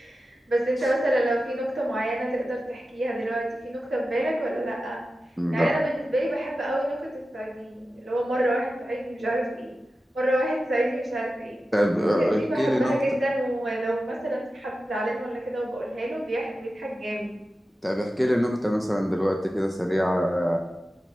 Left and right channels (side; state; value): both; normal; correlation 0.93